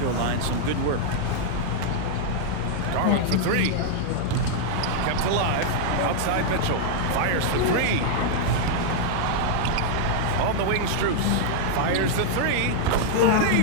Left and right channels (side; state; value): both; different; correlation -0.01